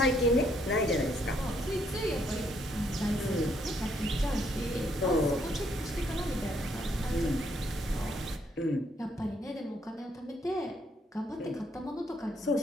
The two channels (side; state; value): both; normal; correlation 0.71